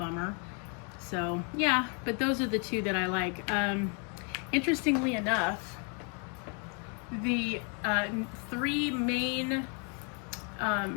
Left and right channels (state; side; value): quieter; right; 36.3 dB